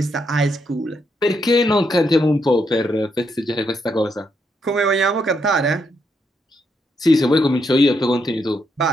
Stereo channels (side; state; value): both; normal; correlation 0.78